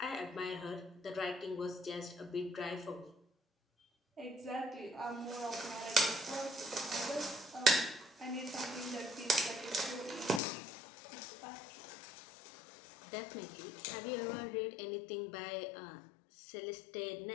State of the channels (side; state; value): right; drops out; at 10.4 s